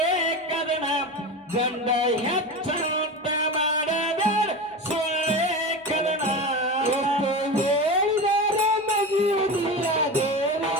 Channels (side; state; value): both; normal; correlation 0.25